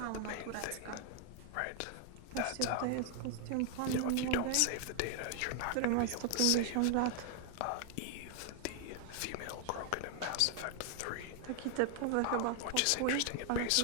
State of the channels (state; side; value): different; both; correlation 0.00